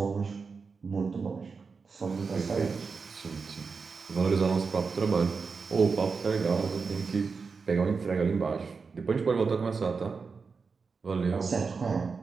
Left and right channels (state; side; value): quieter; left; 4.9 dB